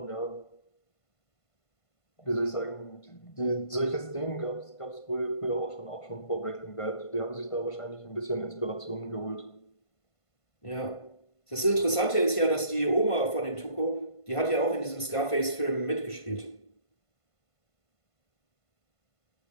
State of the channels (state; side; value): late; right; 1.5 ms